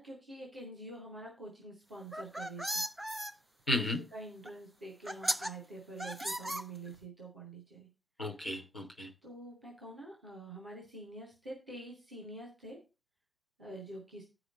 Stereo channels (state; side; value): normal; both; correlation 0.71